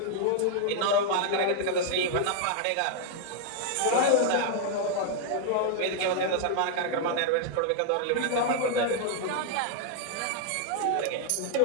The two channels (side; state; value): both; different; correlation 0.00